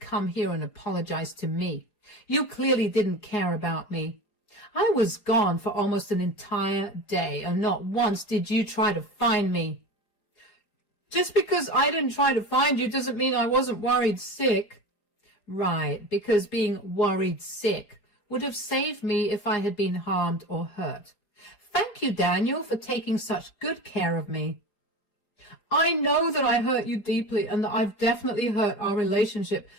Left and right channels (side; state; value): right; late; 4.9 ms